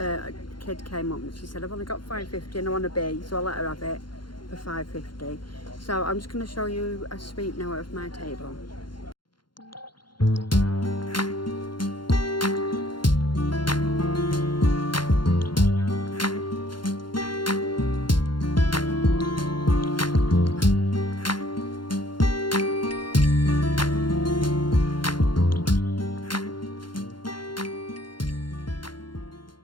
kid came up and she said, I've only got £5.50 and I want a B, so I let her have it for £5.50. So I'm just going to show you a sweep now of my table.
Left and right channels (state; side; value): late; right; 0.72 ms